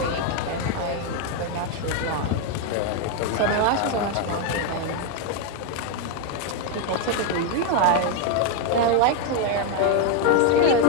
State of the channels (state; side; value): different; both; correlation 0.01